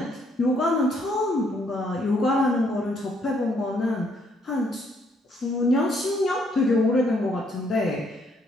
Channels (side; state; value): both; normal; correlation 0.69